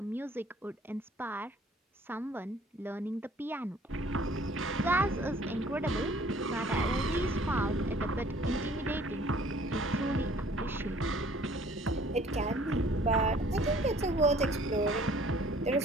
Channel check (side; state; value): both; normal; correlation 0.55